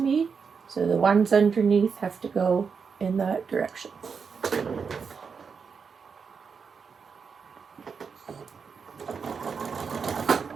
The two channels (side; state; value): left; quieter; 5.8 dB